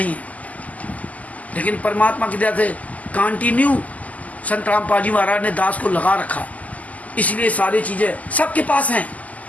है, लेकिन परमात्मा की दया से कंटिन्यू संत रामपाल जी महाराज ने दास को लगा रखा। इसलिए सारी चीजें सबके पास हैं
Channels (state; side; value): late; right; 0.075 ms